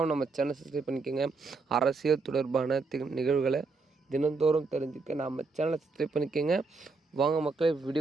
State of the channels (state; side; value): quieter; left; 4.1 dB